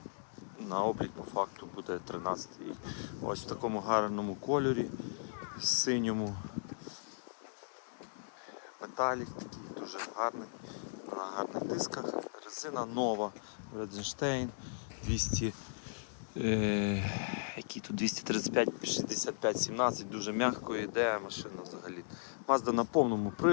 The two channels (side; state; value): right; silent; digital silence